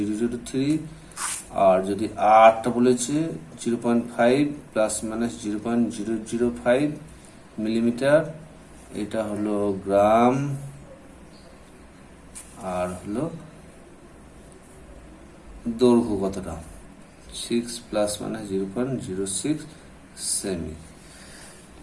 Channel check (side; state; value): both; identical; correlation 1.00